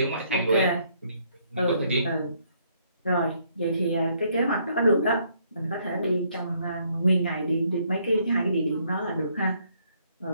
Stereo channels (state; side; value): inverted; both; correlation -0.69